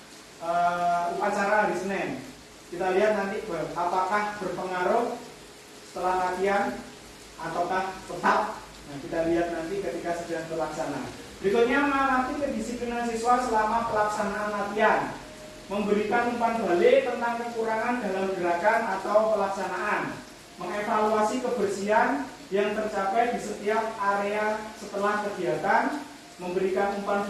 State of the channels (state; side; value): identical; both; correlation 1.00